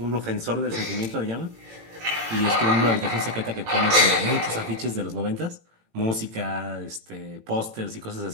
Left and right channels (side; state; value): left; late; 18 ms